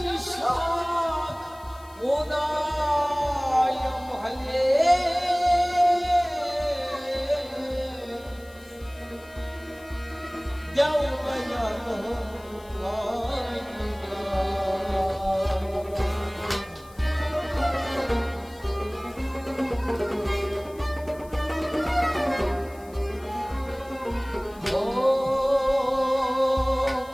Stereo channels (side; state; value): left; noise; hiss, 25 dB below the sound